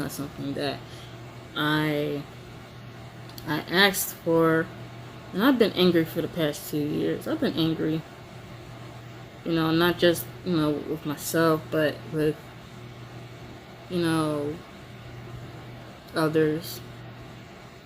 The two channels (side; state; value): both; identical; correlation 1.00